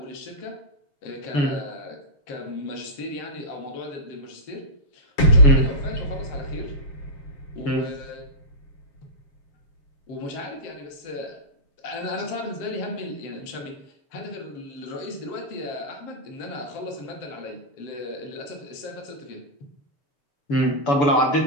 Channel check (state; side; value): late; right; 7.6 ms